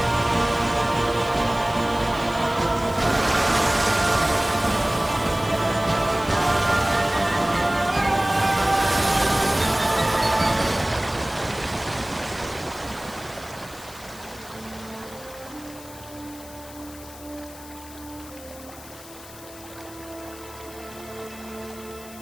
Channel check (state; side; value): noise; left; hiss, 18 dB below the sound